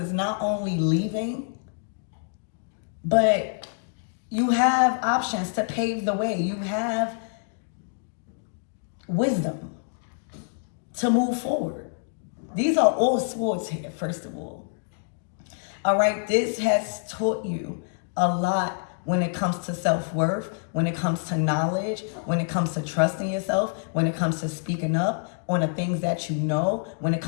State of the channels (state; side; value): silent; right; digital silence